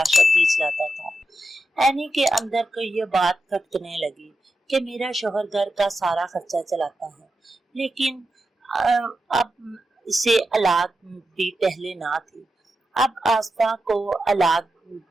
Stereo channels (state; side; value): normal; both; correlation 0.88